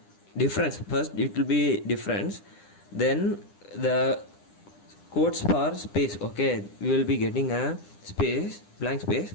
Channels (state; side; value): late; right; 10 ms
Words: First it will be difference, then the quotes for space, okay, we will be getting a space, blank space,